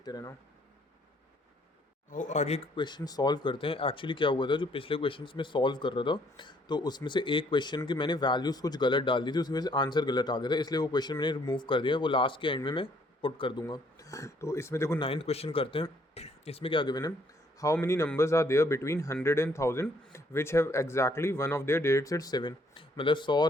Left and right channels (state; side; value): normal; both; correlation 0.66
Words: रहना। और आगे क्वेश्चन सॉल्व करते हैं। एक्चुअली क्या हुआ था, जो पिछले क्वेश्चंस में सॉल्व कर रहा था तो उसमें से एक क्वेश्चन की मैंने वैल्यूज़ कुछ गलत डाल दी थी, उसकी वजह से आंसर गलत आ गया था, इसलिए वो क्वेश्चन मैंने रिमूव कर दिया, वो लास्ट के एंड में मैं पुट कर दूंगा। तो इसमें देखो 9th क्वेश्चन करते हैं। इसमें क्या गिवन है, how many numbers are there between 100 and 1000 which have exactly one of their digits at 7, मतलब 100